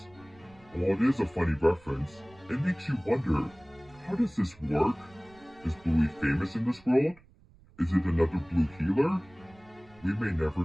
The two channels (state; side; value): noise; right; rumble, 26 dB below the sound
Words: While it is a funny reference, it makes you wonder, how does this work? Is Bluey famous in this world? Is it another Blue Healer? We may never